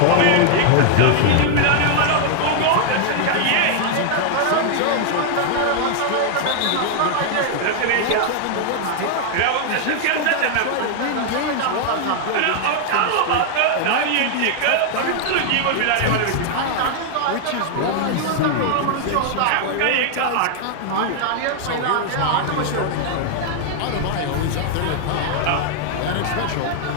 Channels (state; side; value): different; both; correlation 0.00